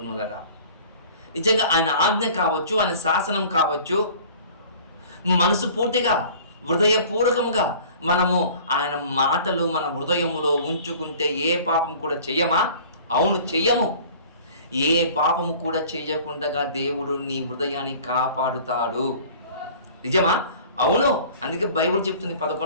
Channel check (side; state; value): both; inverted; correlation -0.46